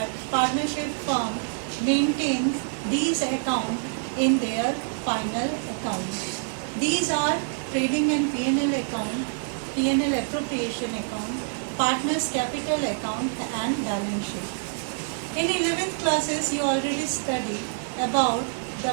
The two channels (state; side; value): silent; left; 61 dB below the other